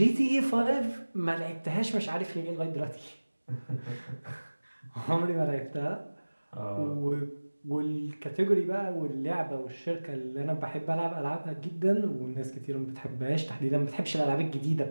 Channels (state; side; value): inverted; both; correlation -1.00